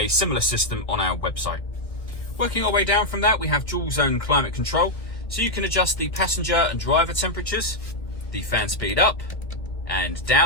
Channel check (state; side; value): late; right; 1.9 ms